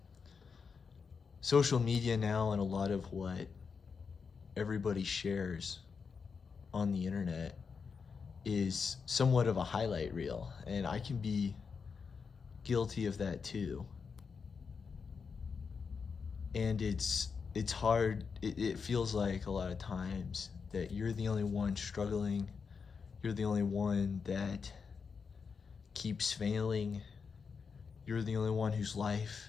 Social media now and a lot of what everybody shares on the internet is somewhat of a highlight reel, and I can be guilty of that too. And it's hard. It feels like a lot of times that you're the only one struggling. You're the only one that keeps failing. You're the only one whose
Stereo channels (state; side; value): quieter; right; 5.6 dB